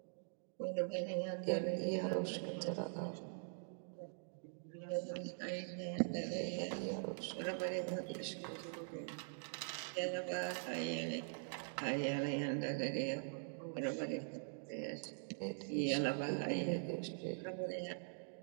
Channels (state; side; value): silent; left; digital silence